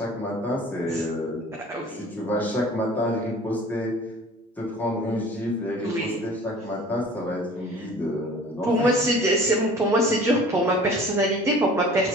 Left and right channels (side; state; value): both; normal; correlation 0.46